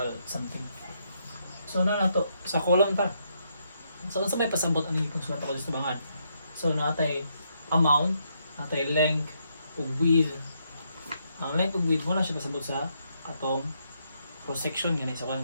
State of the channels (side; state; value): both; inverted; correlation -0.76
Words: something. So na to sa column ta. So unsa may pasabot ani kung sulat ako sa bangad. So natay amount, natay length ug width. Ang length ug width mo na siya pasabot sa atong cross section gani sa kan